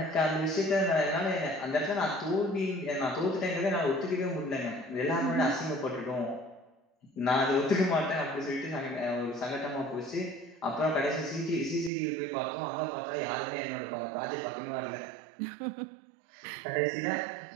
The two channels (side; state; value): left; drops out; at 11.9 s